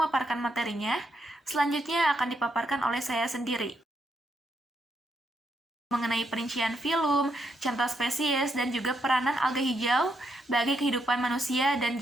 materinya. Selanjutnya akan dipaparkan oleh saya sendiri mengenai perincian filum, contoh spesies, dan juga peranan alga hijau bagi kehidupan manusia dan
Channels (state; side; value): normal; both; correlation 0.78